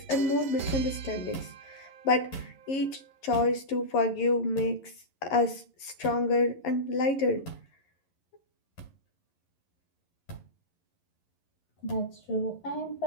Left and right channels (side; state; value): right; late; 11 ms